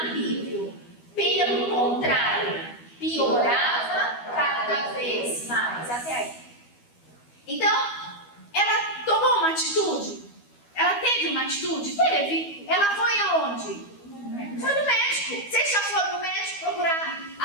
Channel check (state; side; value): late; right; 12 ms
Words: Pelo contrário, piorava cada vez mais. Até aí. Então, ela tomou uma atitude? Ela teve uma atitude? Teve. Ela foi aonde? Foi no médico. Vocês já foram no médico procurar